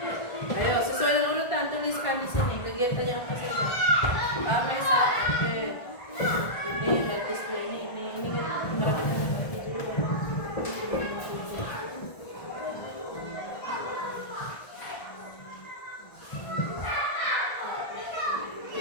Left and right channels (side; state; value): right; late; 1.5 ms